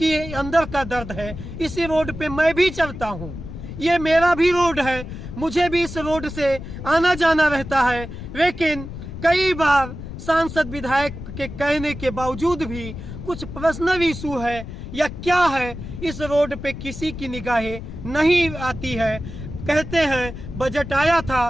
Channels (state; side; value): noise; left; rumble, 10 dB below the sound